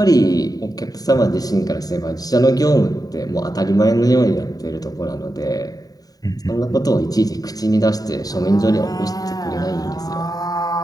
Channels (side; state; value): right; late; 0.18 ms